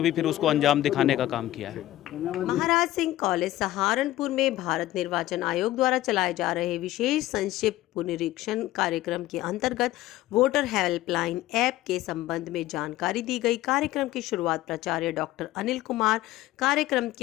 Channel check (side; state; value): right; quieter; 15.4 dB